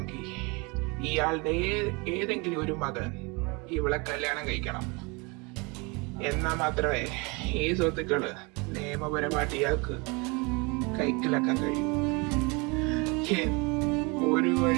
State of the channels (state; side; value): quieter; left; 28.7 dB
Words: ഇയാളുടെ ഏതെങ്കിലും ഒരു മകൻ ഇവളെ കല്യാണം കഴിക്കണം. എന്നാൽ മാത്രമേ ഈ സ്വത്തുക്കള് നിയമപരമായിട്ട് ഇയാൾക്ക് കൈക്കലാക്കാൻ കഴിയും. ഒരു